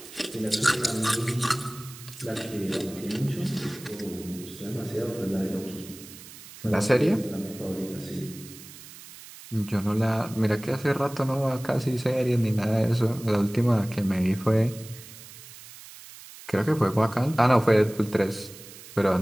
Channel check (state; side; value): noise; right; hiss, 17 dB below the sound